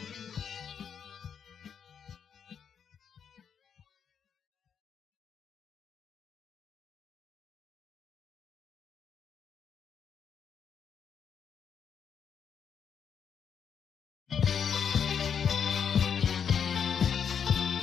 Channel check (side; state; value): right; quieter; 7.4 dB